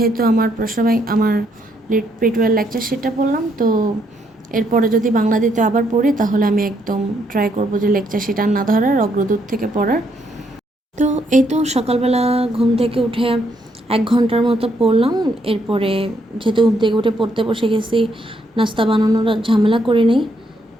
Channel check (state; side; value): normal; both; correlation 0.73